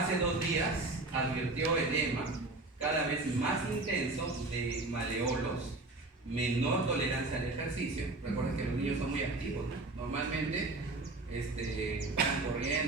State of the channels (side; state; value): left; quieter; 3.1 dB